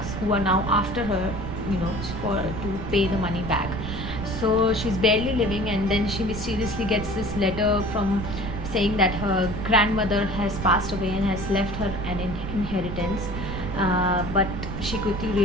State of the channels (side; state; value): right; noise; rumble, 7 dB below the sound